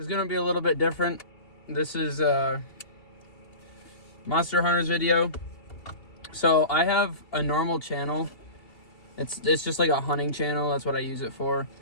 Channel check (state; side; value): late; right; 2.8 ms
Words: going to be a little bit different. This is a Monster Hunters video. So I have a normal channel. It's just like a hunting channel. That's what I use it for.